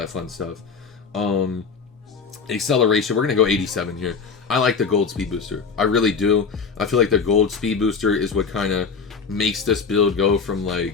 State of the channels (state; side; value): quieter; right; 5.4 dB